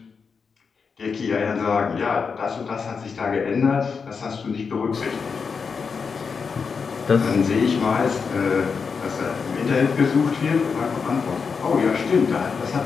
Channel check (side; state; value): right; quieter; 5.5 dB